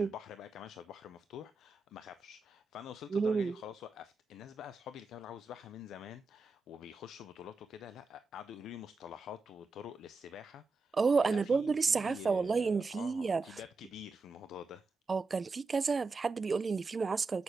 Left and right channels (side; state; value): left; quieter; 3.9 dB